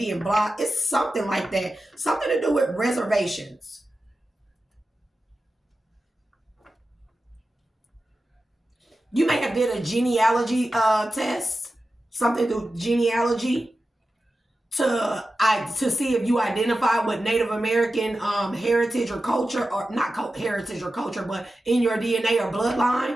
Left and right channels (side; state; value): both; normal; correlation 0.93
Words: blocked. It's something like that. Something to do with reservations. You may have did a genealogy test, something through genealogy to see if you identify with Native American heritage or culture, or not heritage or culture, but in your DNA or